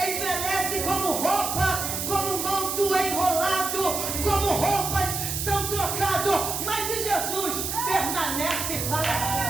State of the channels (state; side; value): noise; right; hiss, 3 dB below the sound